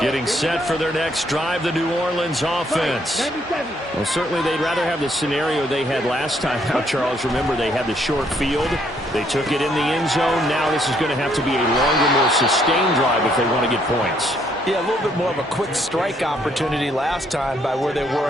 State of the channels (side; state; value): both; normal; correlation 0.70